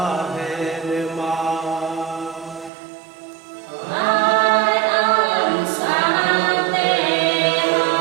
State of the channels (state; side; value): drops out; left; at 2.7 s